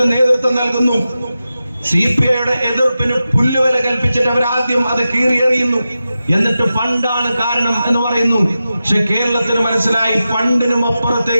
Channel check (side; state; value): both; inverted; correlation -0.92